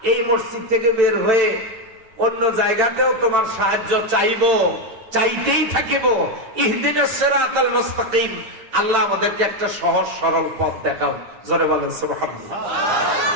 এই মসজিদ থেকে বের হয়ে অন্য জায়গাতেও তোমার সাহায্য চাইতেই থাকিব। ইহদিনাস সিরাতাল মুস্তাকিম, আল্লাহ আমাদেরকে একটা সহজ সরল পথ দেখাও। জোরে বলেন সুবহানাল্লাহ।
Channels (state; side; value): late; left; 9.0 ms